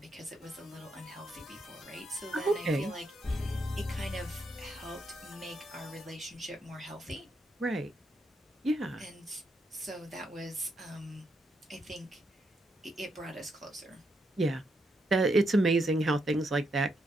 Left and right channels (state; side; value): normal; both; correlation 0.79